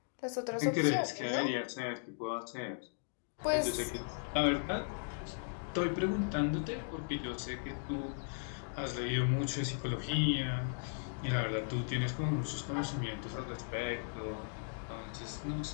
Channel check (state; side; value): silent; right; digital silence